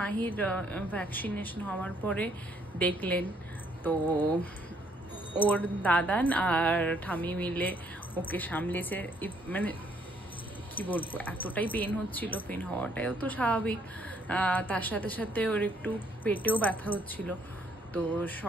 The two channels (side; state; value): both; normal; correlation 0.67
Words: মাহির ভ্যাকসিনেশন হওয়ার পরে দেখলেন তো ওর দাদান আর ঠামি মিলে ওকে সামলেছে। মানে কি বলবো, এতটাই পেন হচ্ছিল, পেন হওয়াটাও তো স্বাভাবিক, তার সাথে সাথে ওর একটু পেটেও ব্যথা হচ্ছিল। তো